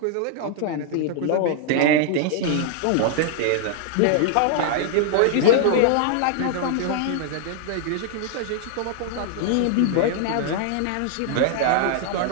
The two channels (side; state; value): both; different; correlation 0.00